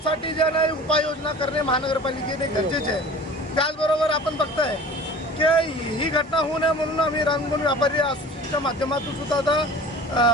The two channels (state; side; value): normal; both; correlation 0.41